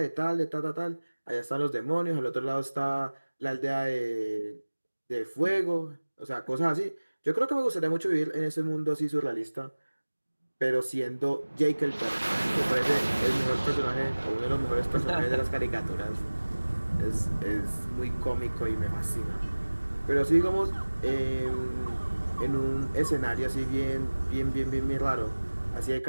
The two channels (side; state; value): both; inverted; correlation -1.00